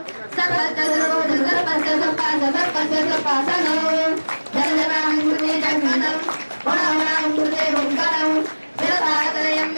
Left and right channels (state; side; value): inverted; both; correlation -1.00